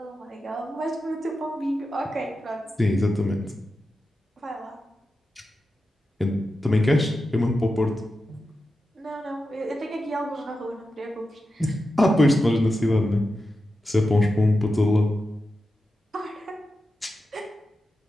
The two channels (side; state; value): both; normal; correlation 0.90